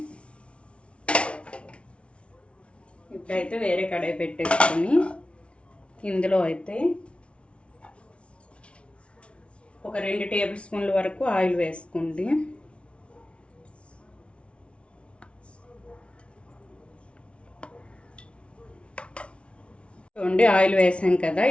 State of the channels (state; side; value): late; right; 0.060 ms